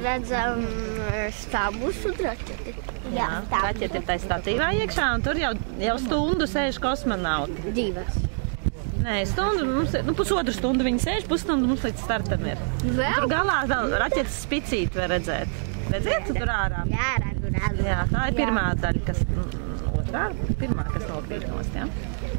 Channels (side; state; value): left; silent; digital silence